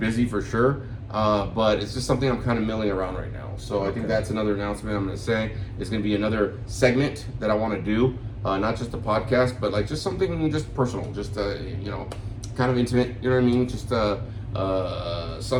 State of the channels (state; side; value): identical; both; correlation 1.00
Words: for sure, but it's just something I'm kind of milling around right now. So I think that's another announcement I'm going to say. It's going to be another segment that I want to do, not just a podcast, but like just something just personal, just, kind of intimate, you know what I mean? Just